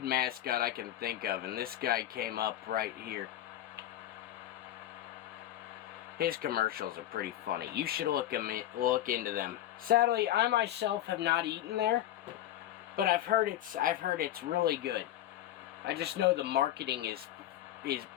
mascot I can think of? And this guy came up right here. His commercials are pretty funny. You should look into them. Sadly, I myself have not eaten there, but I've heard it's really good. I just know the marketing is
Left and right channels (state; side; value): quieter; right; 12.8 dB